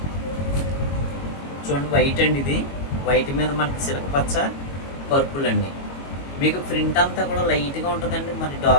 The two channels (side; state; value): right; late; 22 ms